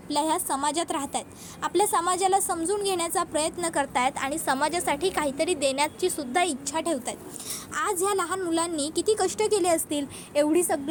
ह्या समाजात राहत आहेत, आपल्या समाजाला समजून घेण्याचा प्रयत्न करत आहेत आणि समाजासाठी काहीतरी देण्याची सुद्धा इच्छा ठेवत आहेत। आज ह्या लहान मुलांनी किती कष्ट केले असतील, एवढी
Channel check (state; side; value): identical; both; correlation 1.00